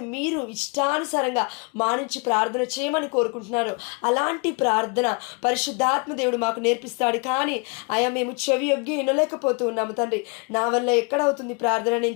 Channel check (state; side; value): quieter; right; 33.1 dB